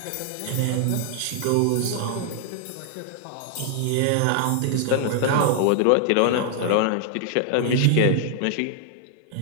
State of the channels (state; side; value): different; both; correlation 0.00